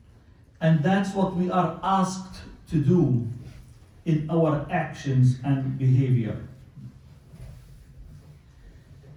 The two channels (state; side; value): identical; both; correlation 1.00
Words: And that's what we are asked to do in our actions and behavior.